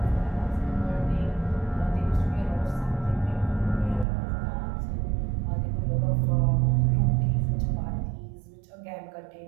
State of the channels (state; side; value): drops out; left; at 4.0 s